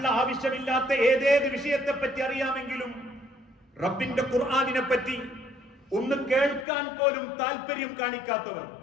ആവശ്യമില്ലാത്ത ഏതേത് വിഷയത്തെ പറ്റി അറിയാമെങ്കിലും റബ്ബിന്റെ ഖുർആനിനെ പറ്റി ഒന്ന് കേൾക്കാൻ പോലും താല്പര്യം കാണിക്കാത്തവർ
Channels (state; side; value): drops out; right; at 6.7 s